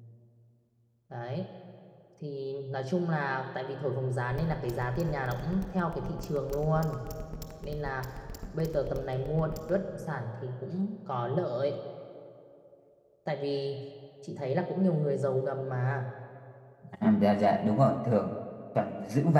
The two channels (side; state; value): both; identical; correlation 1.00